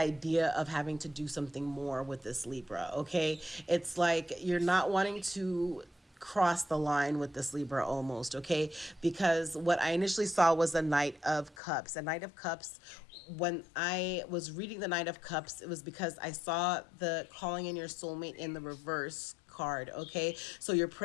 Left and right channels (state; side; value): drops out; right; at 11.6 s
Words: of having to do something more with this Libra. Okay, it's like you're not wanting to cross the line with this Libra almost. Okay, because what I initially saw was a Knight of Cups. A Knight of Cups, when I was reading the Knight of Cups, it was because I saw the calling in your soulmate in the reverse card. Okay, so your